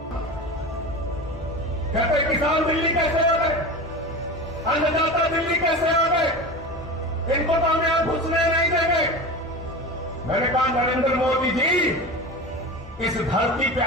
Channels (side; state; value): both; normal; correlation 0.29